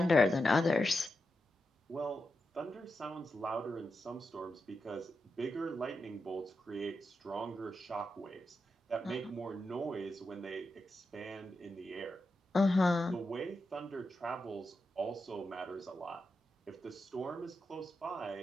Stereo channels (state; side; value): normal; both; correlation 0.87